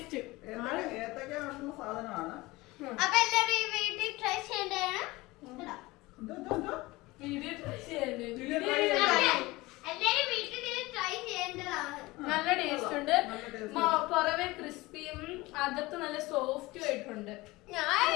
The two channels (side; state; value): right; quieter; 21.0 dB